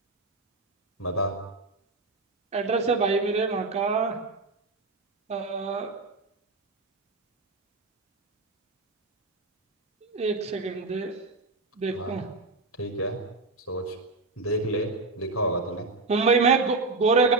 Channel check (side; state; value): left; quieter; 3.6 dB